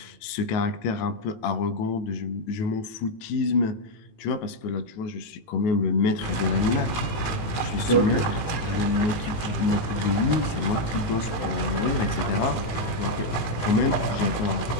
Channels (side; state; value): right; late; 18 ms